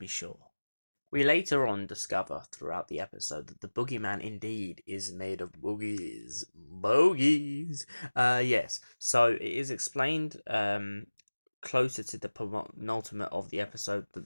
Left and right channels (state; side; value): inverted; both; correlation -1.00